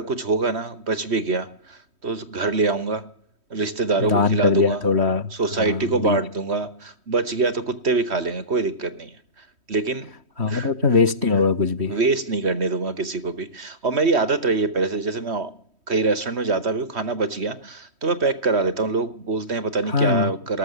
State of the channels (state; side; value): late; left; 3.1 ms